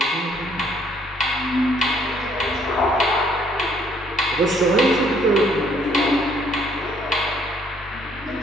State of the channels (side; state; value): both; normal; correlation 0.64